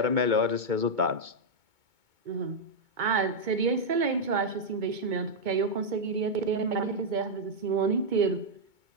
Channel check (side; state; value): left; late; 2.2 ms